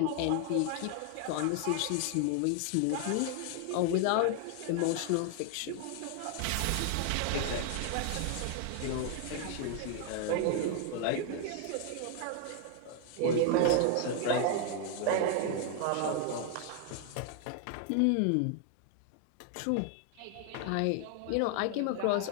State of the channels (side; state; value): both; different; correlation 0.00